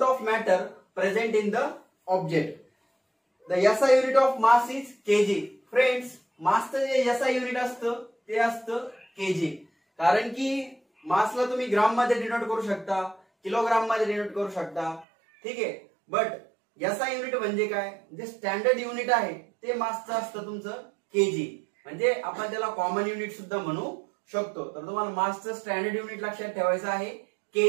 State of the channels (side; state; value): left; drops out; at 15.1 s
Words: of matter present in the object. The SI unit of mass is KG. Friends, मासचं जे एसआय युनिट असतं ते असतं केजी. कारण की मासला तुम्ही ग्राम मध्ये डिनोट करू शकता, किलोग्राम मध्ये डिनोट करू शकता. ठीक आहे, बट एसआय युनिट म्हणजे काय, जे स्टँडर्ड युनिट आहे ते मासचं असतं तुमचं केजी. म्हणजे आपण त्याला कॉमन युनिट सुद्धा म्हणू शकतो. तर तुम्हाला मासचं स्टँडर्ड युनिट लक्षात ठेवायचं आहे